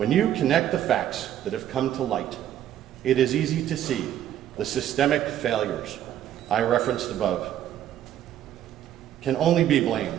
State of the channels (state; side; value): quieter; left; 11.3 dB